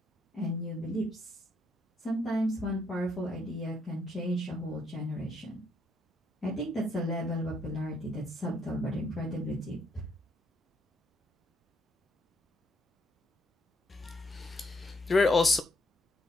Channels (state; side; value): normal; both; correlation 0.72